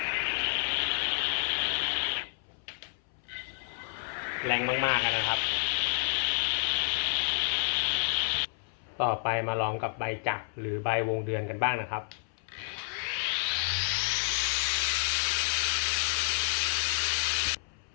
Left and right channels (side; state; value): right; silent; 58 dB below the other